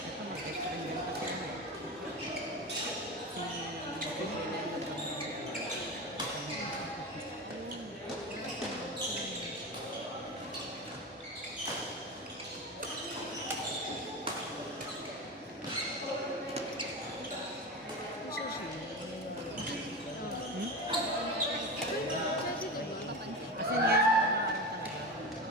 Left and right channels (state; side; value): normal; both; correlation 0.24